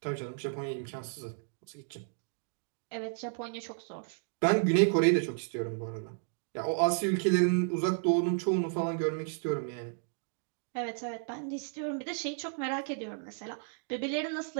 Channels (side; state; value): left; silent; digital silence